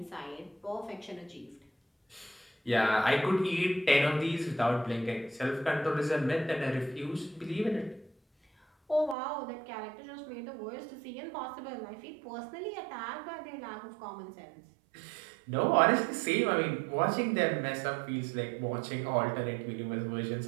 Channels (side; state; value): left; drops out; at 9.2 s